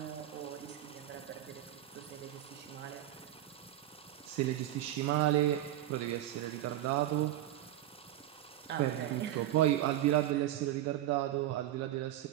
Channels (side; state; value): left; quieter; 13.4 dB